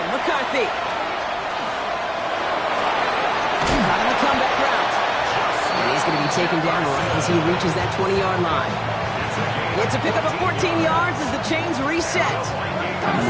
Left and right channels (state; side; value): identical; both; correlation 1.00